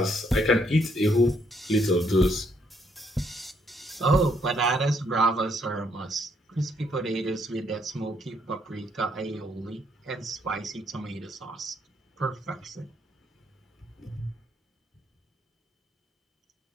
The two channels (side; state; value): both; normal; correlation 0.71